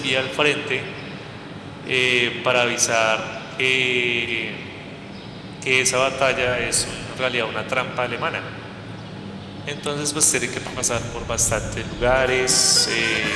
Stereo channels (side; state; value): both; identical; correlation 1.00